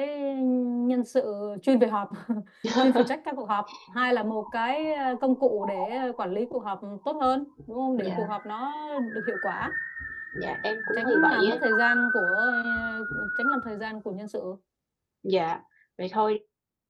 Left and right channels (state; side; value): identical; both; correlation 1.00